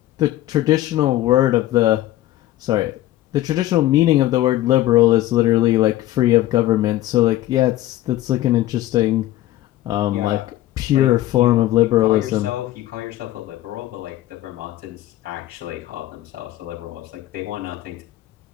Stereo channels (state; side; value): quieter; right; 14.8 dB